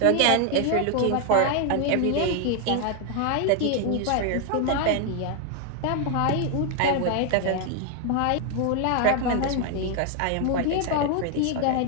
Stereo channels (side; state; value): both; different; correlation 0.00